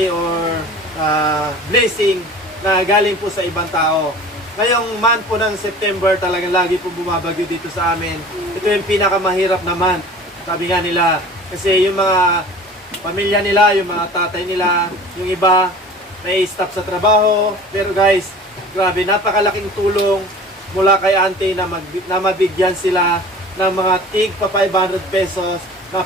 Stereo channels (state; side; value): normal; both; correlation 0.42